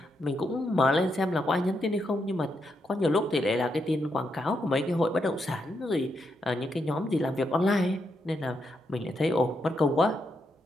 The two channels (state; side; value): normal; both; correlation 0.81